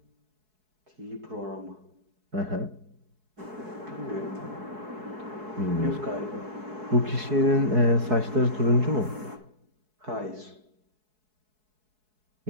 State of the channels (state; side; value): late; left; 4.7 ms